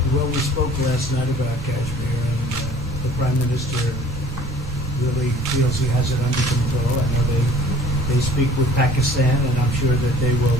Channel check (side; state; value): both; normal; correlation 0.50